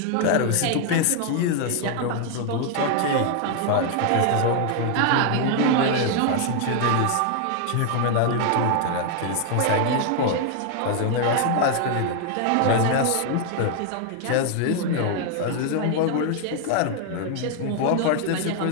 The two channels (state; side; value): different; both; correlation 0.00